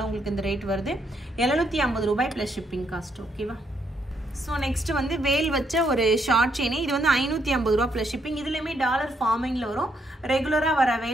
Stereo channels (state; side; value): normal; both; correlation 0.75